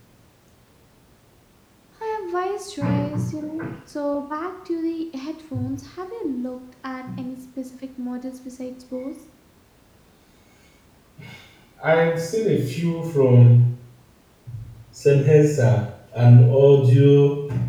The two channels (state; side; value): identical; both; correlation 1.00